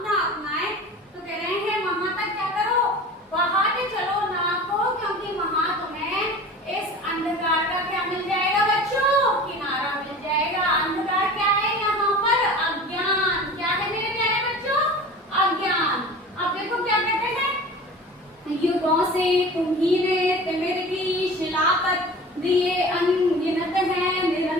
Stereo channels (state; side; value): normal; both; correlation 0.38